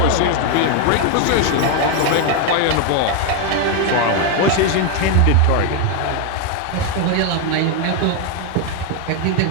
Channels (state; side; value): different; both; correlation 0.01